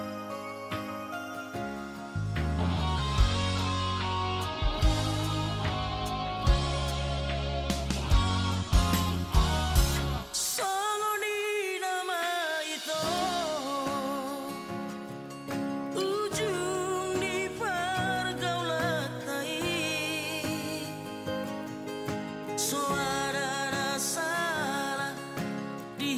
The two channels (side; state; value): both; identical; correlation 1.00